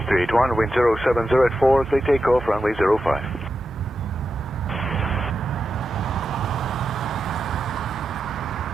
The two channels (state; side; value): normal; both; correlation 0.88